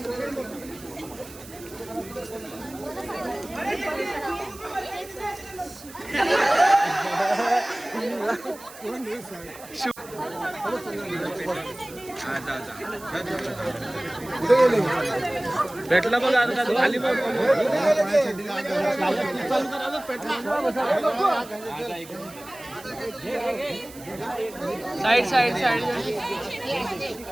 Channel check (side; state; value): right; noise; hiss, 18 dB below the sound